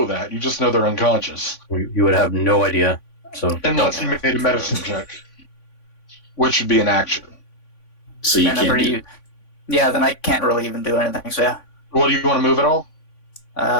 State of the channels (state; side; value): late; right; 3.5 ms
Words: that. You just know they're unconscious. You would have no idea. So Unless you made a medicine check. Which would be an action. So you I never can't do. use. Yeah, then I can't really even do anything. So yeah. Well, do you want to move at all?